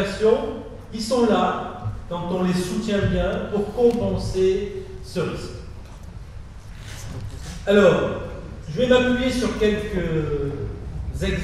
qui sont là, quand on les soutient bien, pour compenser ce risque. Alors, je vais m'appuyer sur quelques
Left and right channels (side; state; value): both; identical; correlation 1.00